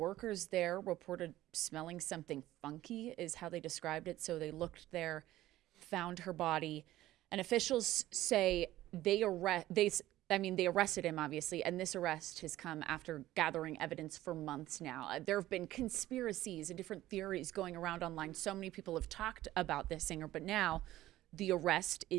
there reported smelling something funky is how they described it. So they looked there, found her body, and officials say I mean, they arrested him, obviously, and this arrest has come after gathering evidence for months now. There have been conspiracies and different theories going around online. So many people have talked about this singer, but now the arrest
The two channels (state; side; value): quieter; left; 15.2 dB